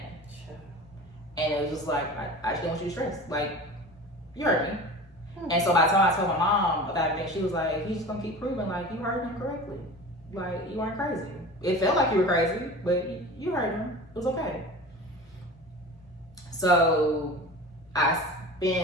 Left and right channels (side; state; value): both; normal; correlation 0.36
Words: And it was just like, I just didn't want you to stress. Like, you heard me. And so by the time I told my mom about everything, she was like, he's just gonna keep proving like you heard him correctly. Like, you weren't crazy. It felt like you were crazy, but you heard him. It was okay. So I